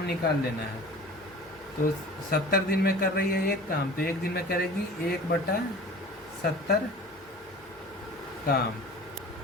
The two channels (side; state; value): both; normal; correlation 0.41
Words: निकाल लेना है। तो 70 दिन में कर रही है एक काम, तो एक दिन में करेगी 1/70 काम,